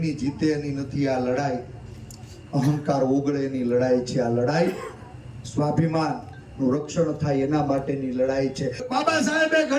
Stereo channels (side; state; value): both; identical; correlation 1.00